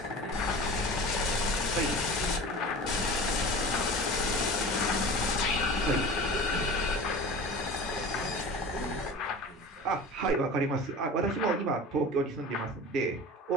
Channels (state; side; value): normal; both; correlation 0.36